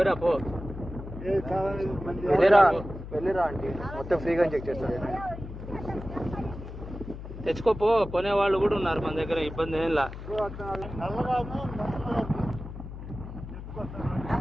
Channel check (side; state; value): left; noise; hum, 10 dB below the sound